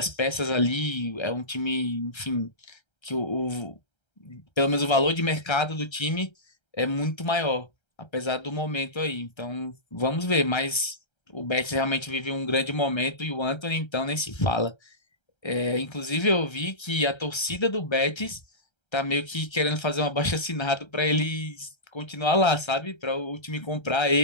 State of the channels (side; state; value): right; late; 1.3 ms